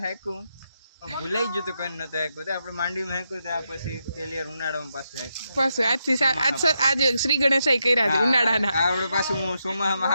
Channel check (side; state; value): both; inverted; correlation -0.83